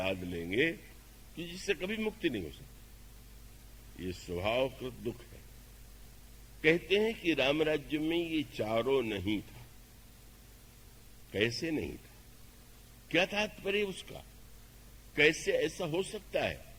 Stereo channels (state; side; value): identical; both; correlation 1.00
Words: लेंगे कि जिससे कभी मुक्ति नहीं हो सकती। ये स्वभावकृत दुख है। कहते हैं कि राम राज्य में ये चारों नहीं था। कैसे नहीं था? क्या तात्पर्य उसका? कैसे ऐसा हो सकता है?